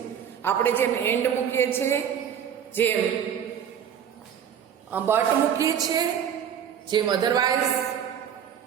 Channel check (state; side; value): quieter; left; 8.7 dB